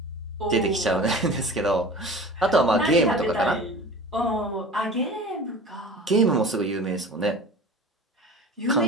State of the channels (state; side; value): normal; both; correlation 0.38